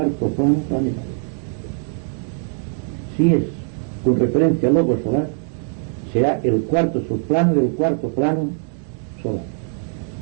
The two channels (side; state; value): left; silent; 59 dB below the other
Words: plano planetario. Si es con referencia al lobo solar, será el cuarto subplano del cuarto plano solar.